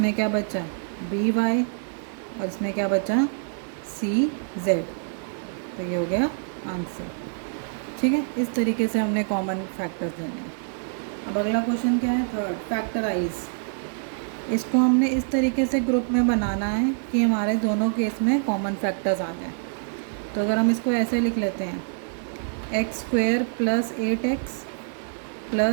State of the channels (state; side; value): silent; left; 61 dB below the other